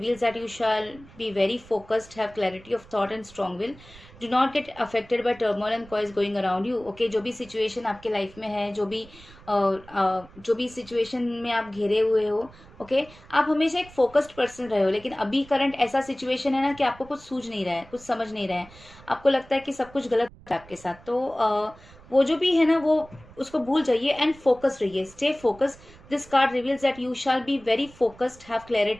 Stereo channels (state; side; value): noise; right; rumble, 22 dB below the sound